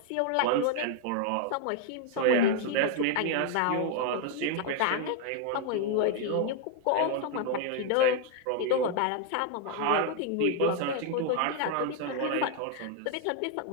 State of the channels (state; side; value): different; both; correlation 0.00